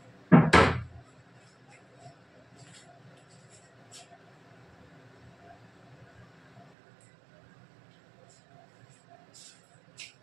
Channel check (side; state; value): left; drops out; at 6.7 s